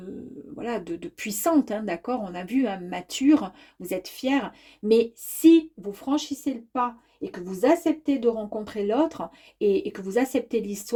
voilà, de puissante, hein, d'accord, on a vu, hein, mature, vous êtes fière, mais si vous franchissez le pas et que vous acceptez de rencontrer l'autre et que vous acceptez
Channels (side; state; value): both; identical; correlation 1.00